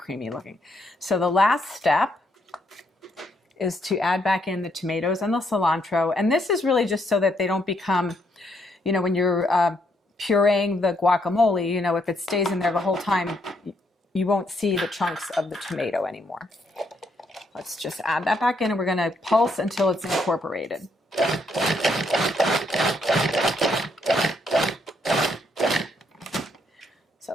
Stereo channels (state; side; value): normal; both; correlation 0.74